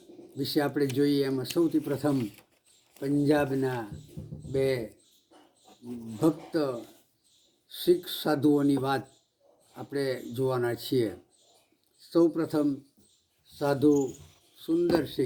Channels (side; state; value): both; identical; correlation 1.00